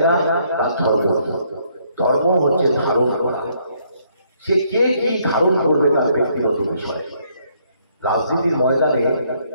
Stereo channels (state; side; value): inverted; both; correlation -0.69